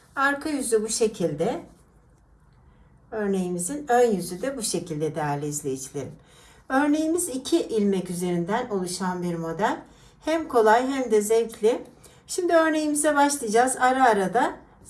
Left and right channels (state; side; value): identical; both; correlation 1.00